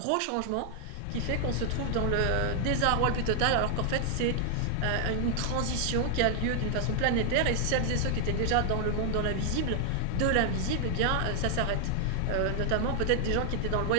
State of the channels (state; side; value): different; both; correlation 0.00